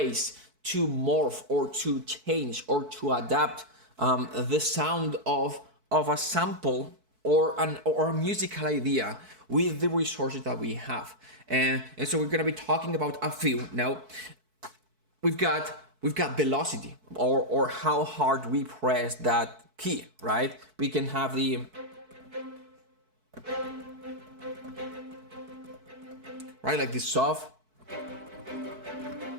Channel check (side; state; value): left; late; 4.6 ms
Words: to morph or to change or to adapt the sound of a sample or a musical idea with the resources that we have. And so we're gonna be talking about a few. Now, we've got velocity, or how hard we press that key, right? We can have the right, like this soft.